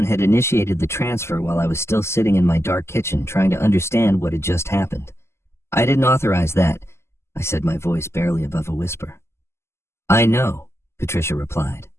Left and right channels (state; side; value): late; right; 0.13 ms